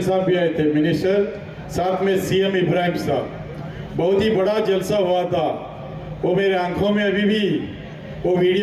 साहब भी आए थे मिनिस्टर, साथ में CM इब्राहिम साहब। बहुत ही बड़ा जलसा हुआ था। वो मेरे आंखों में अभी भी वो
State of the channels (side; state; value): both; identical; correlation 1.00